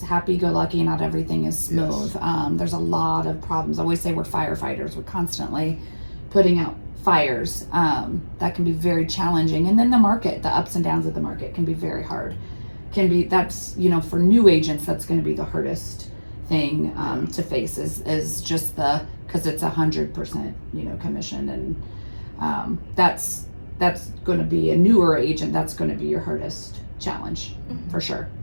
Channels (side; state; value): both; inverted; correlation -1.00